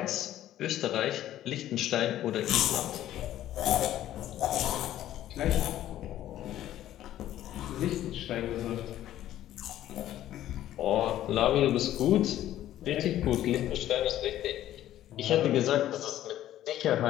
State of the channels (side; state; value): right; quieter; 12.9 dB